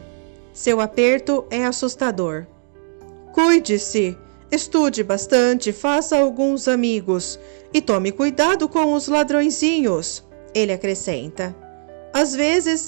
Seu aperto é assustador. Cuide-se, estude bastante, faça alguns amigos e tome cuidado com os ladrõezinhos, ele acrescenta. Às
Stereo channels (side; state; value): left; silent; digital silence